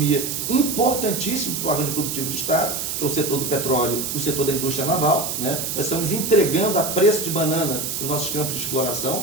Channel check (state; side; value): noise; right; hiss, 3 dB below the sound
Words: importantíssimos para o arranjo produtivo do Estado, que é o setor do petróleo e o setor da indústria naval, né? Nós estamos entregando a preço de banana os nossos campos de